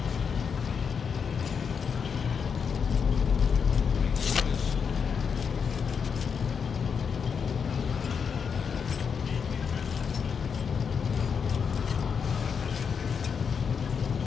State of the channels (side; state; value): right; quieter; 6.4 dB